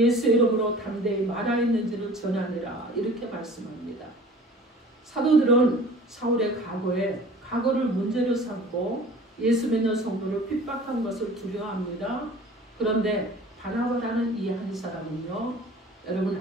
이름으로 담대히 말하였는지를 전하니라 이렇게 말씀합니다. 사도들은 사울의 과거를 문제로 삼고 예수 믿는 성도를 핍박한 것을 두려워합니다. 그런데 바나바라는 이 한 사람은요. 여러분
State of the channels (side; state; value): both; normal; correlation 0.45